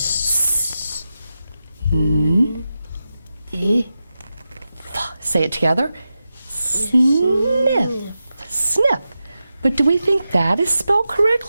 Say it together. Sniff. Sniff. But do we think that is spelled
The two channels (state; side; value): inverted; both; correlation -0.91